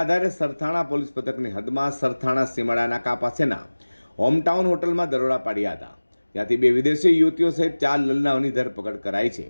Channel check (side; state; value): both; inverted; correlation -1.00